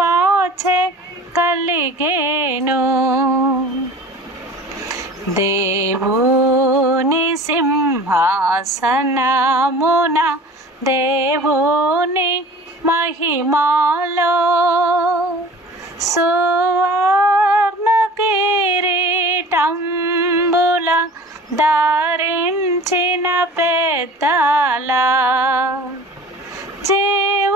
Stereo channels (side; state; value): both; normal; correlation 0.42